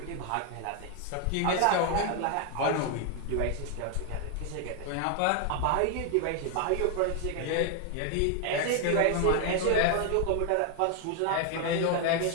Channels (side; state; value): both; different; correlation 0.01